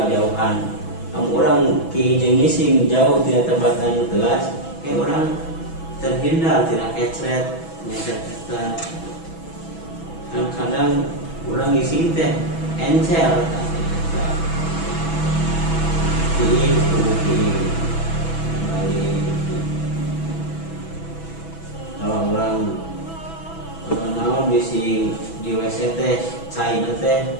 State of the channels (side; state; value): right; late; 6.1 ms